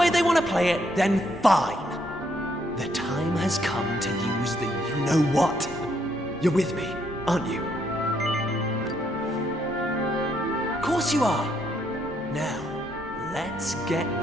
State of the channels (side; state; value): both; normal; correlation 0.73